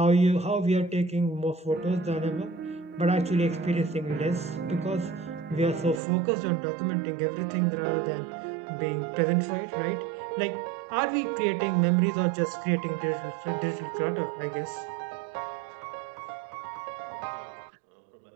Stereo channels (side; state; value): left; drops out; at 6.0 s